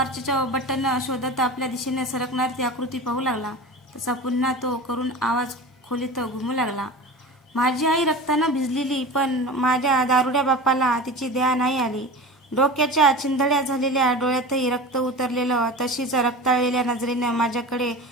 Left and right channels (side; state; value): both; normal; correlation 0.32